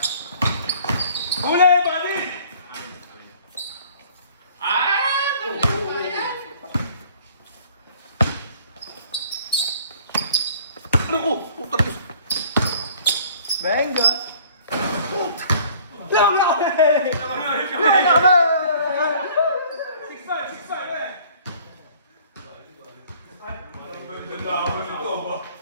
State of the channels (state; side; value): inverted; both; correlation -0.54